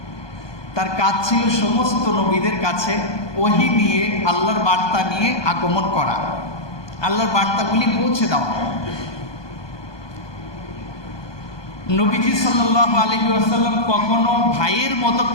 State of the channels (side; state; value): right; late; 1.2 ms